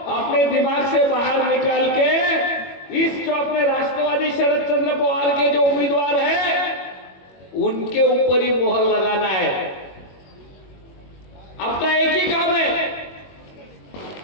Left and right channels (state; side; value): late; right; 21 ms